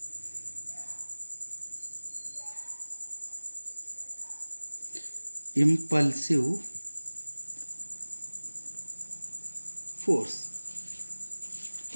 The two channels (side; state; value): both; inverted; correlation -1.00